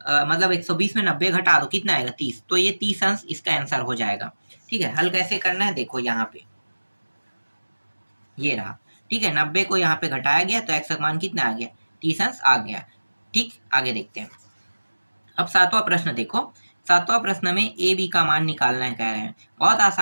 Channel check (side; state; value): both; inverted; correlation -1.00